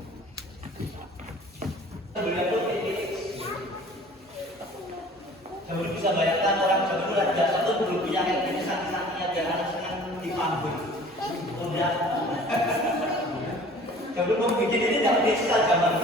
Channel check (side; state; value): both; normal; correlation 0.48